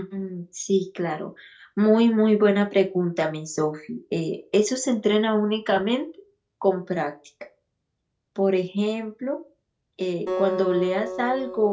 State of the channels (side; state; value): both; identical; correlation 1.00